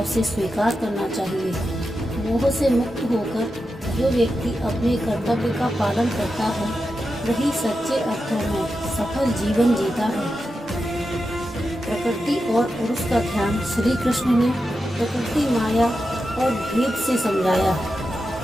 से स्वीकार करना चाहिए। मोह से मुक्त होकर जो व्यक्ति अपने कर्तव्य का पालन करता है, वही सच्चे अर्थों में सफल जीवन जीता है। प्रकृति और पुरुष का ध्यान। श्री कृष्ण ने प्रकृति, माया और भेद से समझाया।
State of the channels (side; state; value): both; normal; correlation 0.89